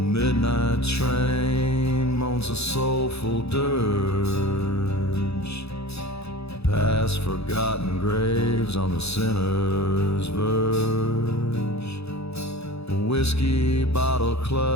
train moans a soulful dirge, past forgotten graves on the sinner's verge. A whiskey bottle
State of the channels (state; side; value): late; right; 0.79 ms